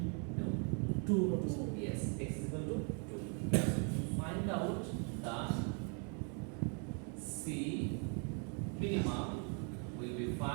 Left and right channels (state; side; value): quieter; left; 38.5 dB